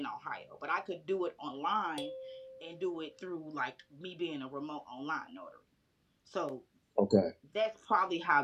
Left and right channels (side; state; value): both; identical; correlation 1.00